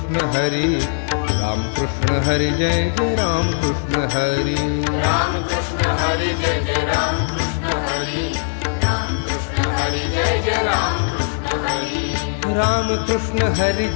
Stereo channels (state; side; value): silent; right; digital silence